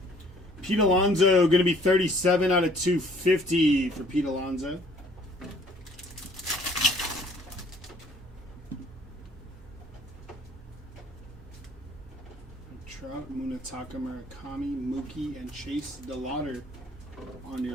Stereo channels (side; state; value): both; normal; correlation 0.58